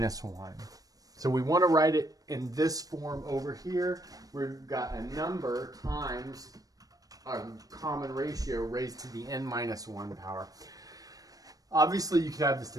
1. So we want to write it in this form over here. We've got a number times a common ratio raised to the n minus 1 power. Obviously, you could have this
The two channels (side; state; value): left; late; 0.18 ms